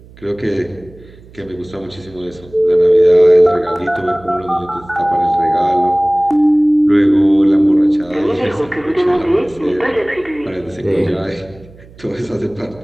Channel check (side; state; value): right; noise; hum, 23 dB below the sound